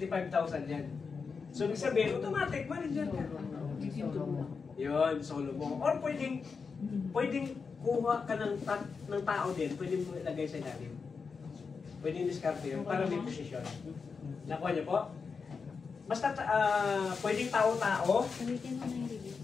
yan. So, ibig sabihin, automatic, manager ka. Yun, solo mo. Or pwedeng kuha ka ng tao din, pwedeng mo ilagay sa ilalim. Pwedeng diskarte yun, para may posisyon. Nakuha niyo po? Basta, pwedeng tao-tao,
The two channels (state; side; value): quieter; right; 5.2 dB